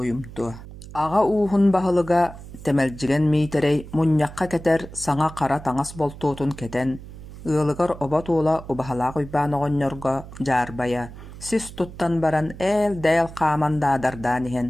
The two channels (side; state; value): right; noise; hum, 15 dB below the sound